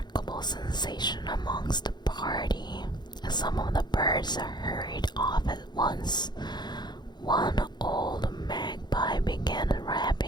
sensation amongst the party. Some of the birds hurried off at once. One old magpie began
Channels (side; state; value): right; late; 0.21 ms